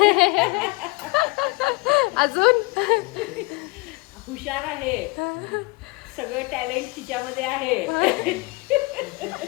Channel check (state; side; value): quieter; right; 26.2 dB